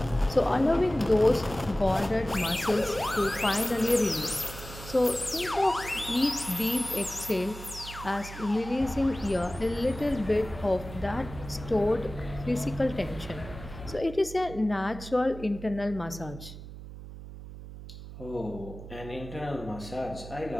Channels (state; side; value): noise; right; hum, 13 dB below the sound